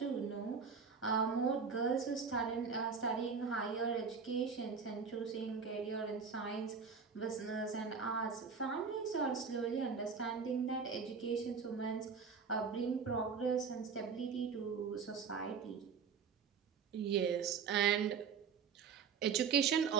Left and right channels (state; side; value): quieter; left; 5.9 dB